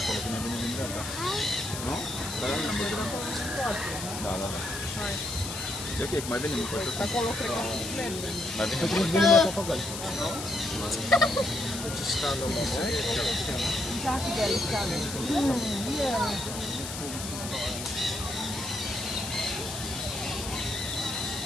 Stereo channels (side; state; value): left; noise; hiss, 7 dB below the sound